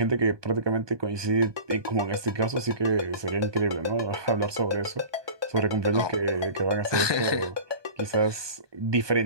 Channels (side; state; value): left; late; 1.2 ms